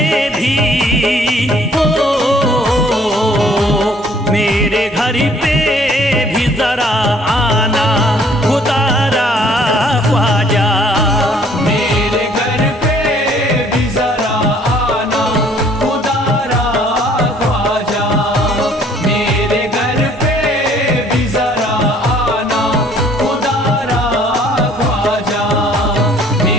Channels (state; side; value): normal; both; correlation 0.59